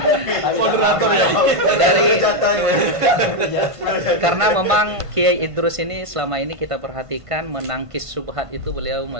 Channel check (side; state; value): left; late; 1.5 ms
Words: Moderator ya. Karena memang Kiai Idrus ini selama ini kita perhatikan menangkis subhat itu beliau